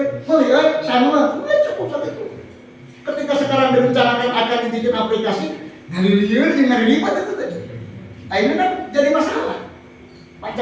melihat sama, cukup satu itu. Ketika sekarang direncanakan akan dibikin aplikasi, dari liur dengan ribet itu tadi. Nah ini kan jadi masalah.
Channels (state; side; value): identical; both; correlation 1.00